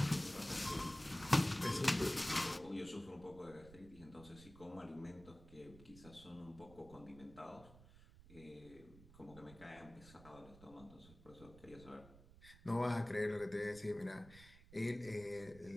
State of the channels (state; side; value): noise; right; rumble, 19 dB below the sound